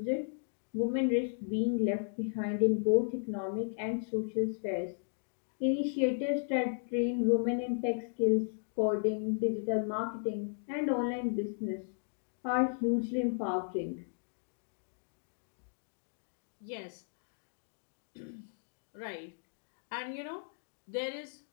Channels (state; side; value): silent; right; digital silence